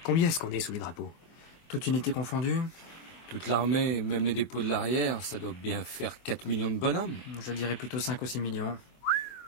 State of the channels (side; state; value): right; late; 24 ms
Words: Combien est-ce qu'on est sous les drapeaux? Toute unité confondue? Toute l'armée, même les dépôts de l'arrière, ça doit bien faire 4 millions de bonhommes. Je dirais plutôt 5 ou 6 millions.